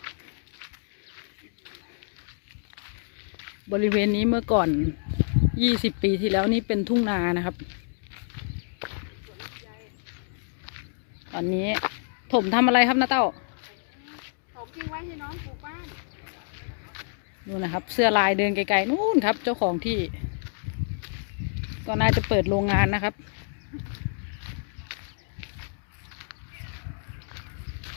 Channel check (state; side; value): silent; right; digital silence